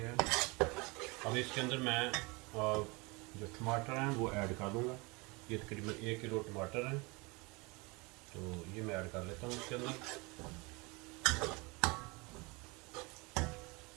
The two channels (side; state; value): left; quieter; 26.9 dB